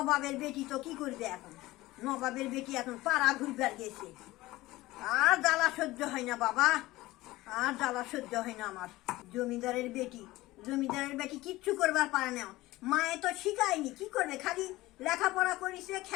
বেটি তো কি করবে এখন, নবাবের বেটি এখন পাড়া ঘুরবার গেছে। আর জ্বালা সহ্য হয় না বাবা, আর জ্বালা সহ্য হয় না আমার। জমিদারের বেটি কিচ্ছু করবার পারে না, মায়ে তো শিখায়নি, কি করবে, খালি লেখাপড়া করিছে,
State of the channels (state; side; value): quieter; right; 18.4 dB